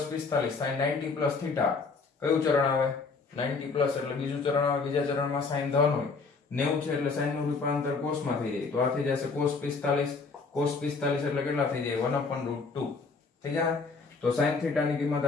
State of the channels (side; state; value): right; quieter; 4.4 dB